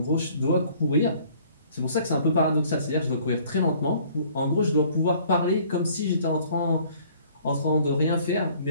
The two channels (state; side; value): inverted; both; correlation -0.57